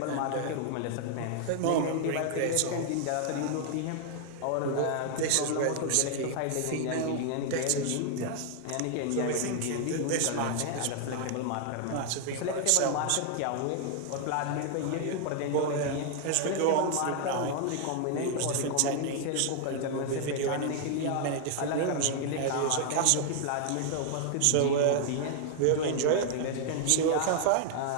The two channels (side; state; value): both; different; correlation 0.00